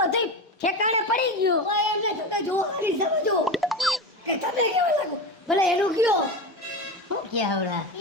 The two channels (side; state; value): both; normal; correlation 0.23